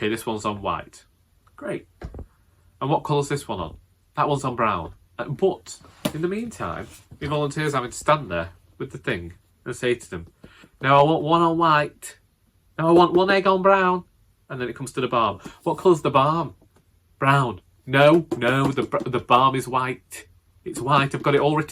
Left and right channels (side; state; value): both; identical; correlation 1.00